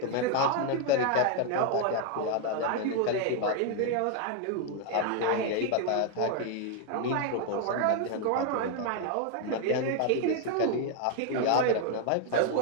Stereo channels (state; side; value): different; both; correlation 0.00